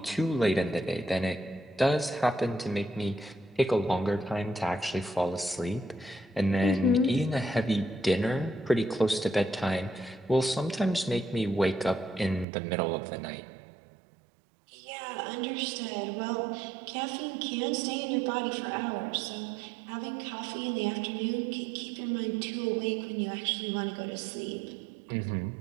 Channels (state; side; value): drops out; left; at 12.5 s